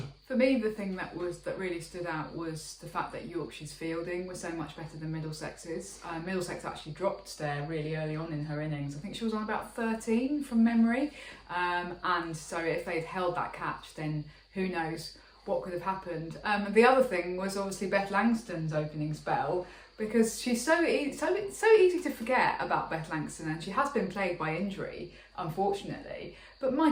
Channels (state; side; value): identical; both; correlation 1.00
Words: For me, the thing that really stood out was the fact that Yorkshire's fielding was so much better than Middlesex's. Middlesex actually dropped there really early on in her innings. I think she was on about 13 from memory, and so if they'd held that catch, then who knows what could have happened. The other thing was obviously Beth Langston's opening spell, because she's so easy to forget about Beth Langston, and she has been plagued by injury, unfortunately. But my